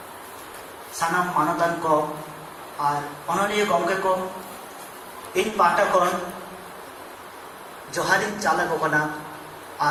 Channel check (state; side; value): identical; both; correlation 1.00